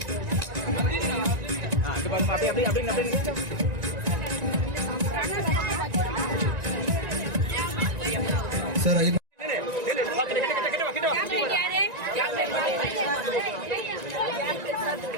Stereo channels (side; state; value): left; late; 1.9 ms